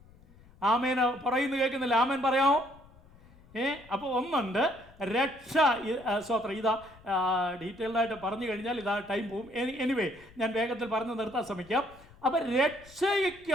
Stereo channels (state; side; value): noise; left; rumble, 25 dB below the sound